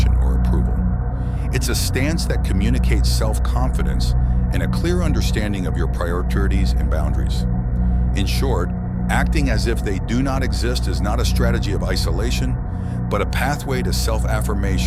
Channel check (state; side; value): identical; both; correlation 1.00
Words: or approval. It's a stance that communicates self-confidence and a clear understanding of your priorities and boundaries. In short, acting as if they do not exist is not a strategy of isolation, but a pathway to